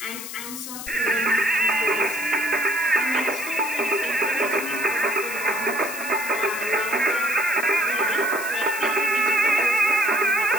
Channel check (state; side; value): noise; left; hiss, 9 dB below the sound